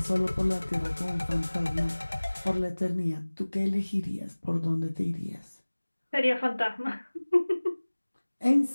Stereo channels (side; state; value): both; inverted; correlation -1.00